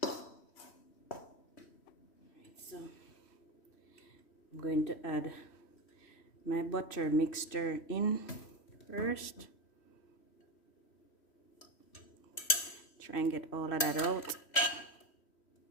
Alright, so I'm going to add my butter mixture in first. Try and get all of that out.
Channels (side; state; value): right; late; 3.1 ms